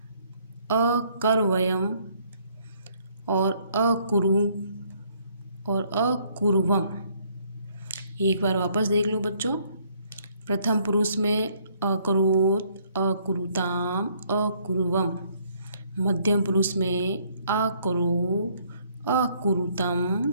अकर्वयम और अकुरु और अकुर्वम। एक बार वापस देख लो बच्चों। प्रथम पुरुष में अकरोत, अकुरुताम, अकुर्वम। मध्यम पुरुष में अकरो, अकुरुतम,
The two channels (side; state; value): both; inverted; correlation -0.65